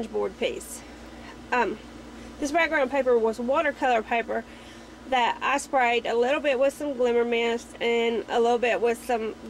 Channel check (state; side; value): identical; both; correlation 1.00